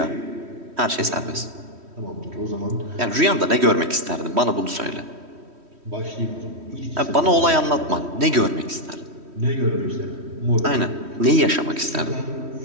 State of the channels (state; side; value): late; left; 3.1 ms